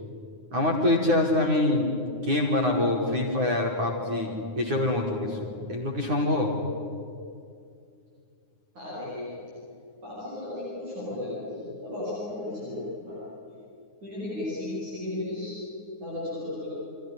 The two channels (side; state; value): left; late; 9.6 ms